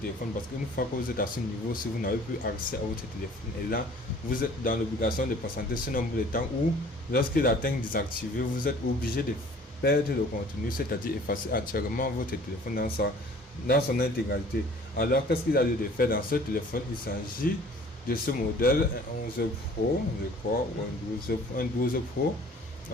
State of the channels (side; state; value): both; normal; correlation 0.51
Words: parce qu'une fois que vous êtes à ce niveau, si vous n'avez plus accès à votre téléphone, et là vous êtes dans l'obligation de patienter ce nombre de temps où, lorsqu'il atteint désactivé, vous êtes obligé de perdre le contenu, c'est-à-dire effacer entièrement votre téléphone dans son intégralité. Alors qu'est-ce qu'il a lieu de faire dans ce téléphone? Il s'agit de ce modèle, un 11 Pro, je crois, ou un 12 Pro,